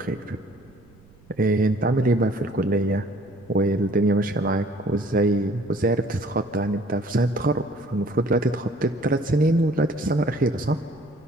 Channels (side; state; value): right; noise; rumble, 28 dB below the sound